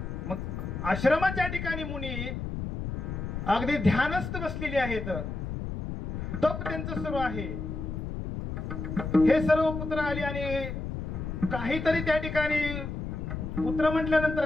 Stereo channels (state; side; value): noise; left; rumble, 5 dB below the sound